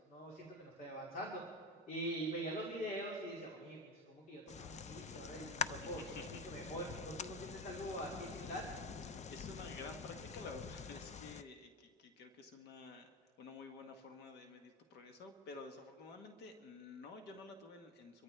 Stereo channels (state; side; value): normal; both; correlation 0.18